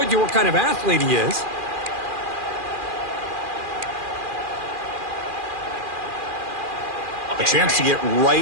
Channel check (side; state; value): left; late; 2.4 ms